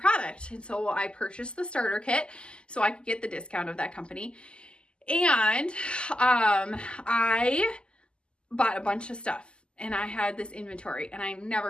And so I purchased the starter kit so I could get the discount of that company. And I bought a bunch of stuff. And I had this inventory and I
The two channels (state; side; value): late; right; 0.050 ms